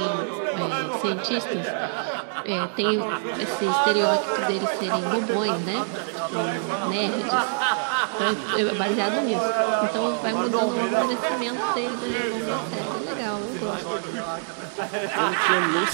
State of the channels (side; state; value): left; silent; digital silence